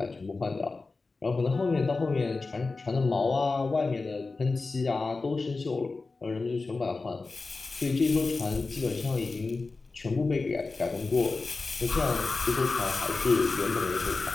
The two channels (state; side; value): quieter; right; 3.8 dB